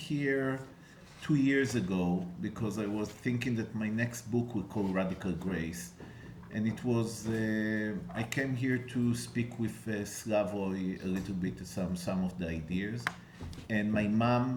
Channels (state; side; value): identical; both; correlation 1.00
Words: 2 years ago because I was thinking that my next book will call Radical Grace. And it was, I came here to speak with Slavoj a little bit, some of the ideas. And my